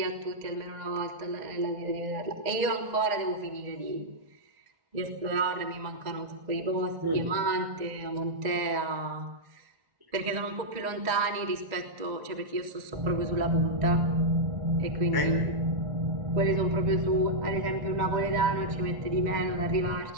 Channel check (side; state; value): left; late; 2.0 ms